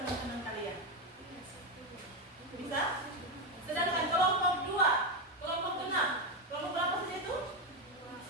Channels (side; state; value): both; normal; correlation 0.09